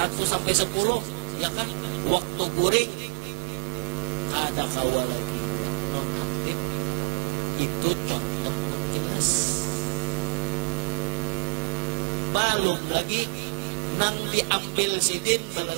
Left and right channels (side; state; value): left; quieter; 36.6 dB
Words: sampai 10, ya kan? Waktu kuring ada kawanan. Itu contoh jelas. Balok lagi nang diambil sidin